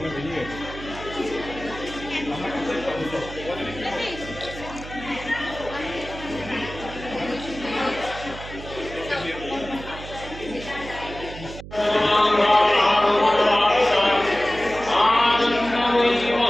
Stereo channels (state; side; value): noise; right; hum, 13 dB below the sound